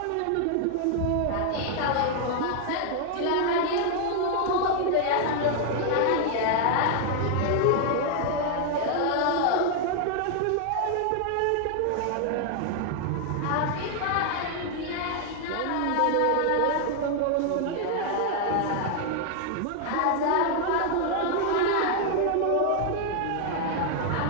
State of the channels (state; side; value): different; both; correlation 0.00